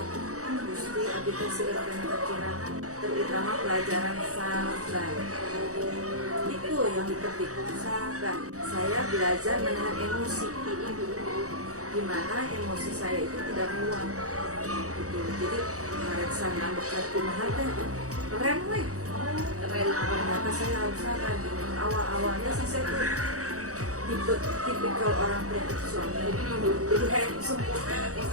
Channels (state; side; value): late; left; 0.66 ms